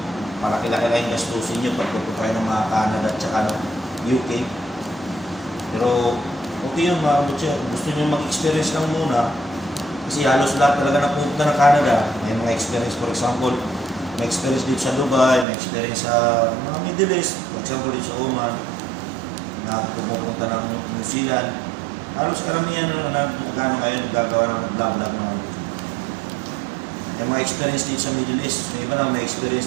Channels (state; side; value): drops out; left; at 15.5 s